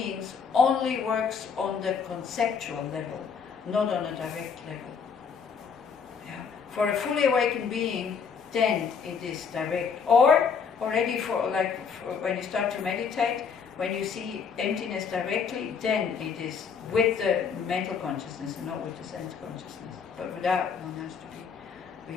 only works on the conceptual level, not on a direct level. Yeah. For a fully awakened being, then it is direct. Or already for when you start to meditate, when you see emptiness directly, then it is with the mental consciousness and not with the sense consciousness. But without, one has to be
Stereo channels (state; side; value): quieter; right; 6.2 dB